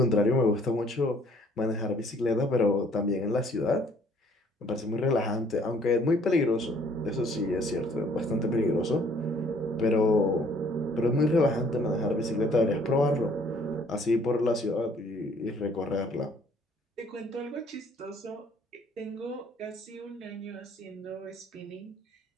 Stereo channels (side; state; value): both; normal; correlation 0.59